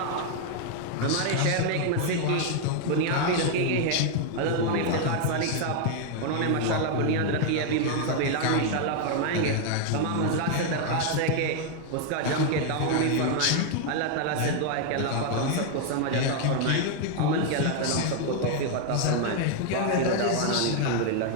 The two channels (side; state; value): both; different; correlation 0.00